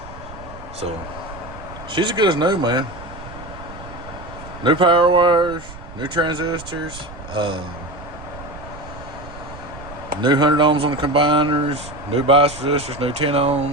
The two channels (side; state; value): right; noise; rumble, 15 dB below the sound